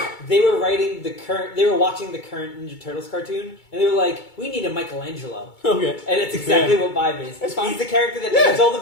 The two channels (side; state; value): right; late; 2.2 ms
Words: they were watching the current Ninja Turtles cartoon, and they were like, "We need a Michelangelo," Okay. and it's exactly what Vibe is. That's fine. He's the character that names all the